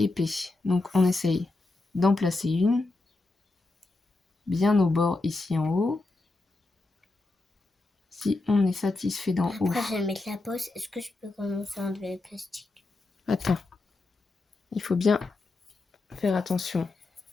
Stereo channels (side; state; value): right; quieter; 3.2 dB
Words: Donc, on essaye d'en placer une. Bien au bord, ici en haut. Si on est satisfait d'en haut. Après, je vais mettre la pause. Est-ce que je peux commencer à enlever le plastique? Attends. Il faut bien faire attention.